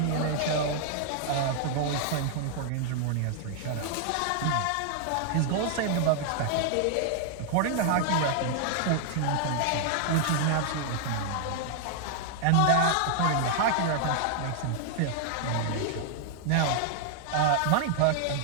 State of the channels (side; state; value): both; different; correlation 0.00